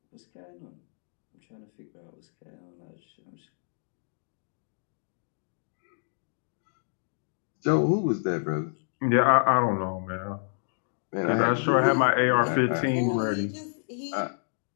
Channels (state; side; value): silent; right; digital silence